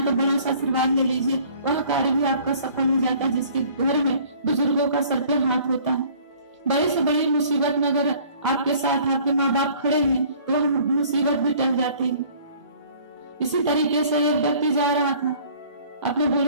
तो बड़ा सा आशीर्वाद ले लीजिए, वह कार्य भी आपका सफल हो जाता है जिसके घर में बुजुर्गों का सर पे हाथ होता है। बड़ी से बड़ी मुसीबत में अगर आपके साथ आपके माँ बाप खड़े हैं तो वह मुसीबत भी टल जाती है। इसी तरीके से एक व्यक्ति जा रहा था अपने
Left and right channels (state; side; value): inverted; both; correlation -0.53